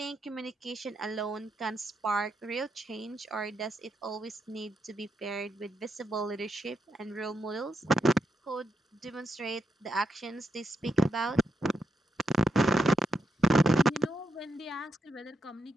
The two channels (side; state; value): both; normal; correlation 0.82